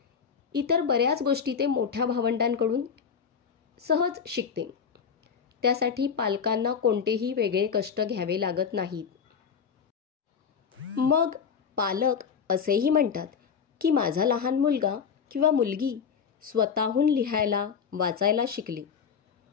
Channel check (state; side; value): quieter; right; 6.6 dB